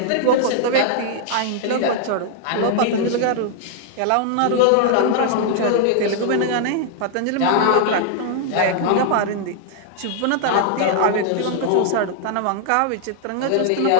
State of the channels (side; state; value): both; different; correlation -0.01